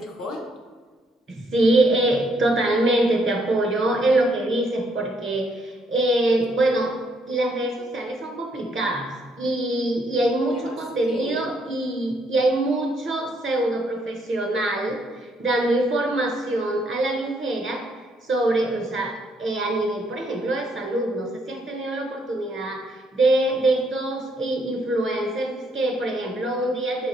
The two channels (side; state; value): both; normal; correlation 0.71